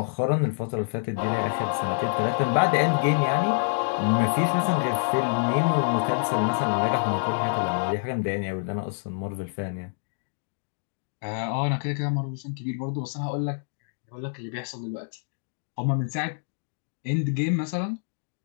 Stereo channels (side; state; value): right; silent; digital silence